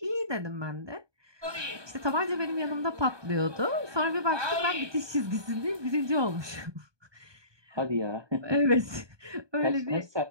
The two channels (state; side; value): late; left; 1.2 ms